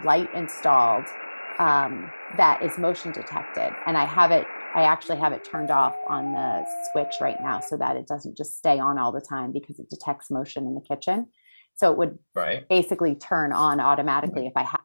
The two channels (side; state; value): both; inverted; correlation -1.00